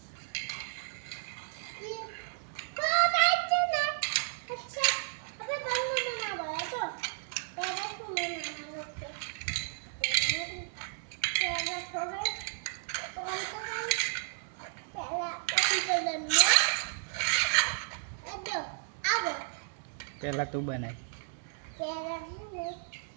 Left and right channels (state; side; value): silent; left; digital silence